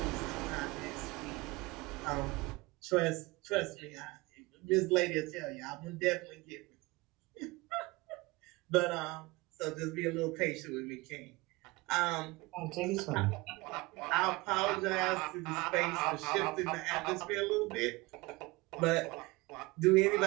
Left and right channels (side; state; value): left; quieter; 23.1 dB